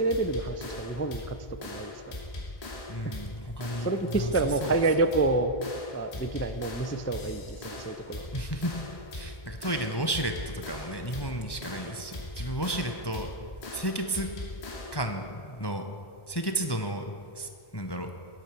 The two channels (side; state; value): right; late; 1.1 ms